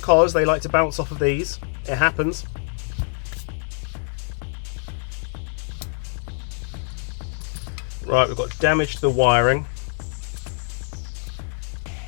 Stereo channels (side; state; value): right; silent; 62 dB below the other